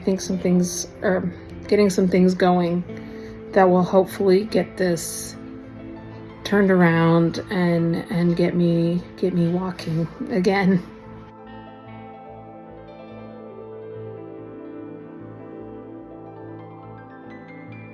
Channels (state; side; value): identical; both; correlation 1.00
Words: some things are getting some things going that will hopefully get this turned around and get me walking again.